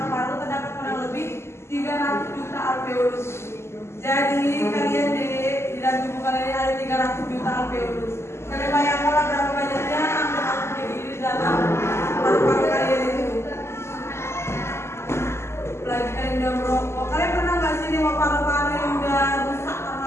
Terdapat kurang lebih 300 juta alveolus. Jadi kalian di dalam tubuh kalian ada 300 juta alveolus. Kalian bayangkanlah berapa banyaknya angka-angka di dalam paru-paru kalian itu. Apalagi kalian udah merokok. Kalian pernah nggak sih nengok paru-paru yang udah rusak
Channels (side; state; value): right; late; 0.13 ms